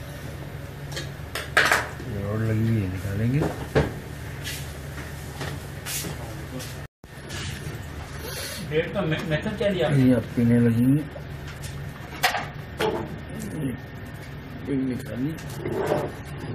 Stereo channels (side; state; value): both; identical; correlation 1.00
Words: रॉड लगी हुई है, निकालेंगे। डेट का मेथड क्या दिया? ये आप पीने लगेंगे, निकालिए।